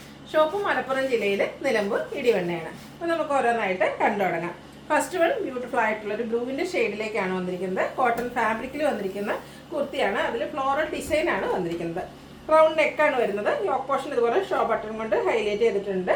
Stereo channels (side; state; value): both; identical; correlation 1.00